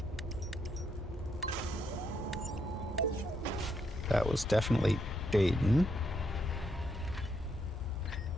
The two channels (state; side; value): normal; both; correlation 0.76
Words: That was definitely Dayton.